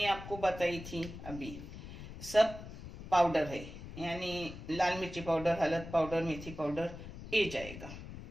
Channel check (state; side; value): noise; left; rumble, 12 dB below the sound